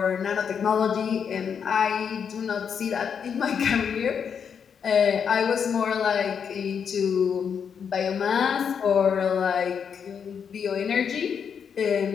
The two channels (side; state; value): right; quieter; 7.1 dB